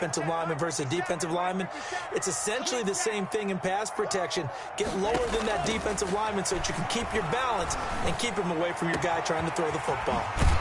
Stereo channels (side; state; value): both; identical; correlation 1.00